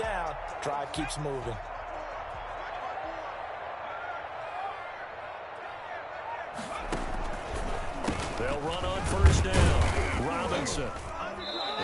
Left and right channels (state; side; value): identical; both; correlation 1.00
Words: Drive keeps moving. They'll run on first down. Robinson.